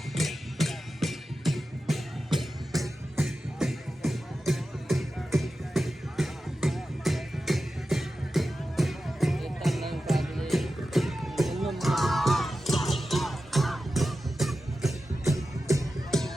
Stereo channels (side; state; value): both; normal; correlation 0.93